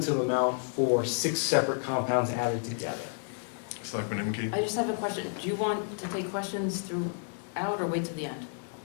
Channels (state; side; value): silent; right; 57 dB below the other